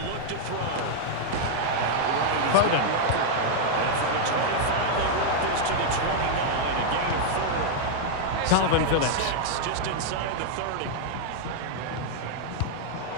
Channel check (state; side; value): different; both; correlation -0.01